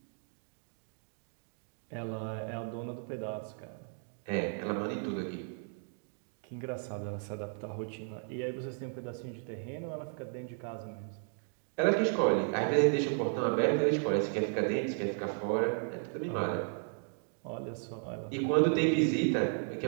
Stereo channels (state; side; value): silent; left; 55 dB below the other